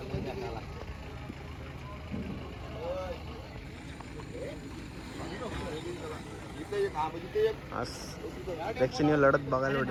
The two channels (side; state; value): both; identical; correlation 1.00